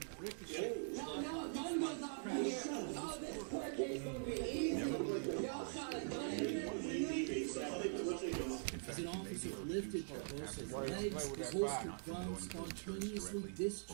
As an officer lifted Barbosa's legs, his holstered gun spontaneously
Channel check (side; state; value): left; silent; digital silence